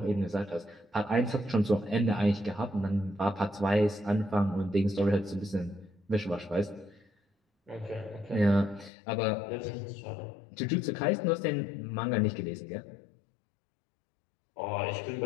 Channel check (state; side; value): drops out; right; at 8.9 s